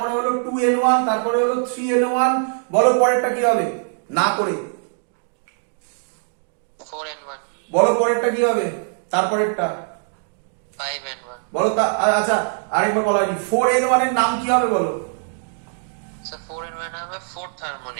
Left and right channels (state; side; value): silent; left; digital silence